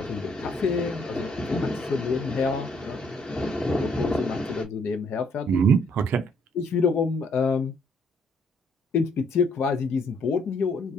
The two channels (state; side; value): normal; both; correlation 0.67